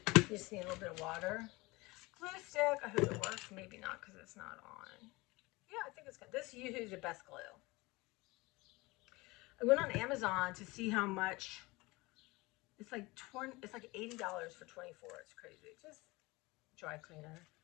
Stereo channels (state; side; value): quieter; right; 22.7 dB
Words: You just need a little bit of water. Glue stick. I hope it works. Maybe not because it's not on. Yeah, I think it's good. This usually is the best glue. I went on Amazon to see how much. It's like $80 for 24. It's crazy. Just dry cleaner.